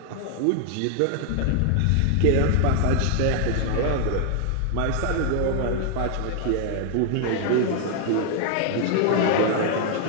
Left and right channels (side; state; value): both; different; correlation 0.00